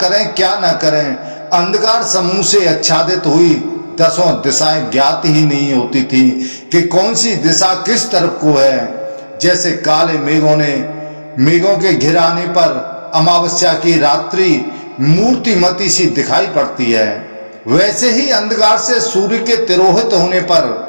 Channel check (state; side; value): inverted; both; correlation -1.00